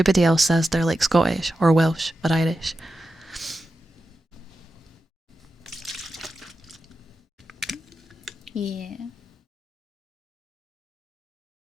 else says they're like Scottish or Welsh or Irish. Yeah.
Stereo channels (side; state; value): both; normal; correlation 0.90